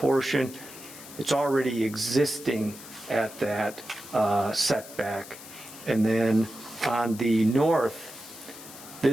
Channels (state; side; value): noise; left; hiss, 16 dB below the sound